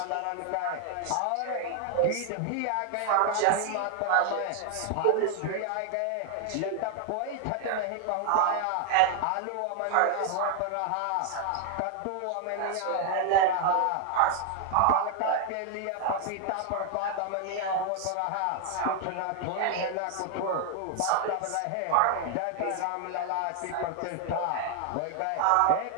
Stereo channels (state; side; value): different; both; correlation 0.00